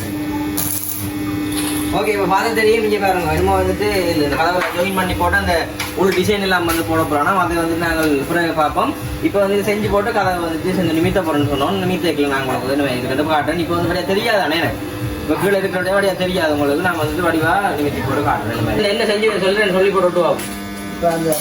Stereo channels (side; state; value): both; identical; correlation 1.00